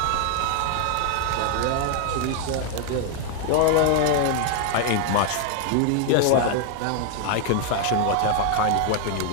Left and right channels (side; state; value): both; different; correlation 0.00